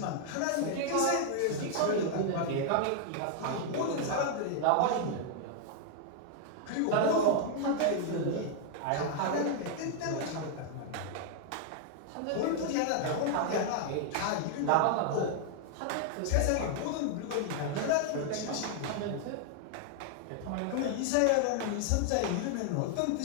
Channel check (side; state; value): both; different; correlation 0.00